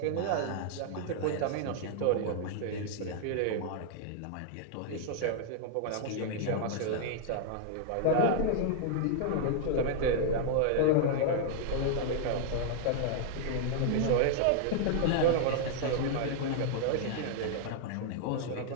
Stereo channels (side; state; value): both; different; correlation -0.01